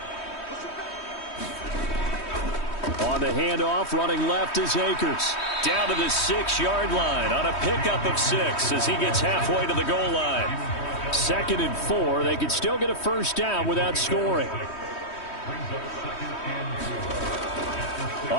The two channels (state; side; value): late; right; 3.1 ms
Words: On the handoff, running left is Akers. Down to the 6-yard line on a pickup of 6 as he gets halfway to the goal line. 2nd and 4. They could still get a first down without scoring.